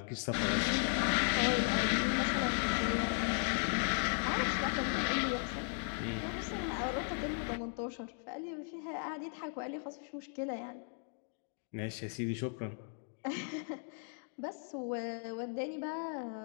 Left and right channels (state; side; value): silent; right; 53 dB below the other